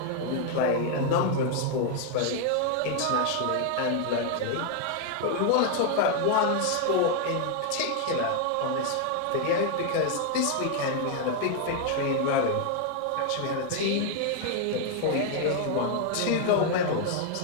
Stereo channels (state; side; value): different; both; correlation 0.00